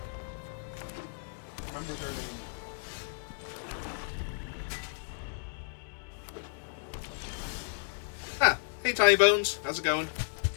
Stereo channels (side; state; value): right; silent; digital silence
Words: Remember their name. Ah, hey Tiny Bones, how's it going?